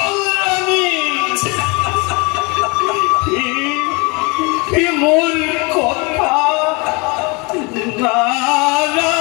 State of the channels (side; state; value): right; quieter; 28.5 dB